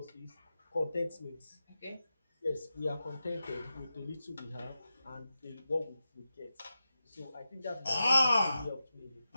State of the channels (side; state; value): both; inverted; correlation -0.91